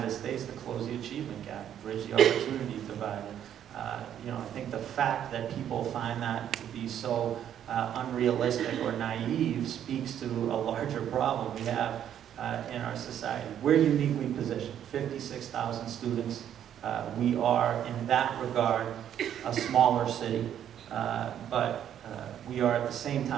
States to close the achievement gap, bridge the opportunity divide. I think the fact that people find that to be so unrealistic or naive speaks to a larger problem we have in our society. We're uniquely positioned, 56,000 students. We are, in that regard, a smaller city, but we are at the same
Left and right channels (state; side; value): quieter; left; 10.0 dB